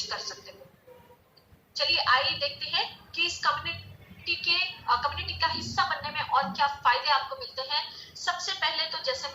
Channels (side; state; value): both; identical; correlation 1.00